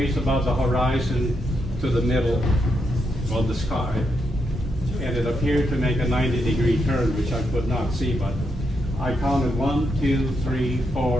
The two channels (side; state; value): both; normal; correlation 0.81